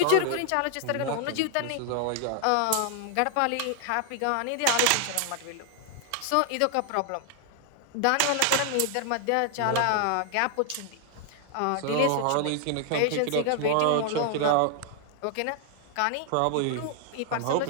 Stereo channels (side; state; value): both; different; correlation 0.00